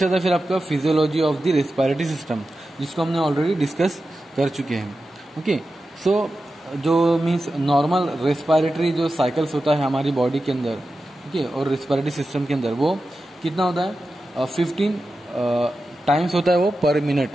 आता है फिर आपका physiology of the respiratory system, जिसको हमने ऑलरेडी डिस्कस कर चुके हैं। ओके, सो जो मीन्स नॉर्मल रेस्पिरेटरी जो साइकिल्स होता है हमारी बॉडी के अंदर, ओके, और रेस्पिरेटरी सिस्टम के अंदर वो कितना होता है, 15 टाइम्स होता है वो पर मिनट।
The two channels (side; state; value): both; normal; correlation 0.92